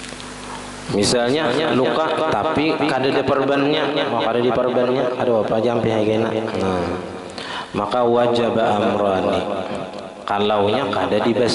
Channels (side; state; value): both; identical; correlation 1.00